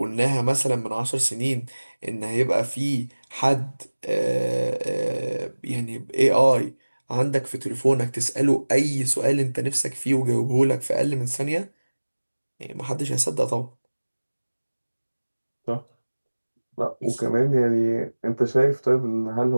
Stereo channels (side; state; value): both; inverted; correlation -1.00